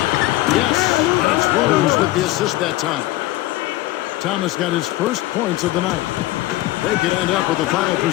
Yes, and it's Rose with the assist that time. Thomas got his first points of the night. They could end up with a final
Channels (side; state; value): right; quieter; 16.9 dB